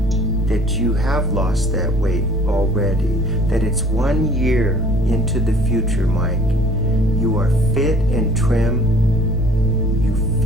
that you have lost that weight already, that it's 1 year into the future, Mike. You are fit and trim. You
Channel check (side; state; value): right; noise; rumble, 13 dB below the sound